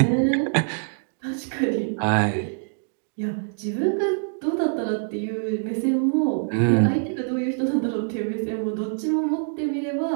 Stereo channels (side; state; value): left; silent; digital silence